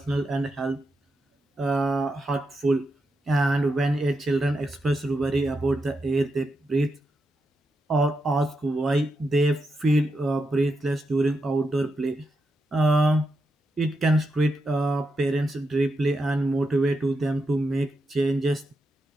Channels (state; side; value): normal; both; correlation 0.85